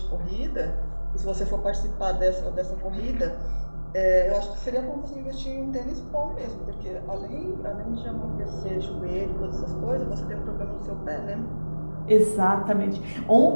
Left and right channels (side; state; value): both; inverted; correlation -1.00